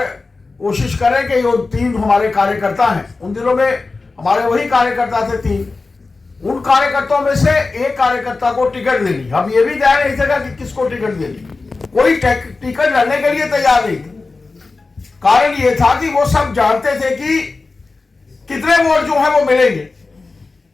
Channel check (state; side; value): quieter; right; 3.8 dB